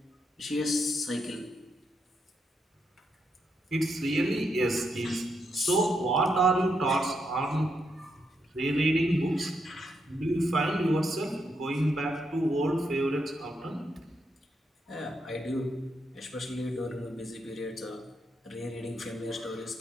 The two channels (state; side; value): normal; both; correlation 0.80